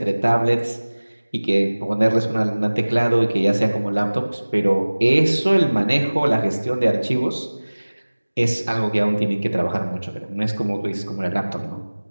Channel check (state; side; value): inverted; both; correlation -1.00